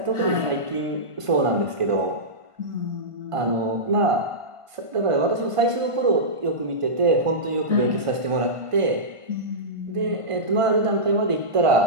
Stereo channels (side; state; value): left; late; 1.5 ms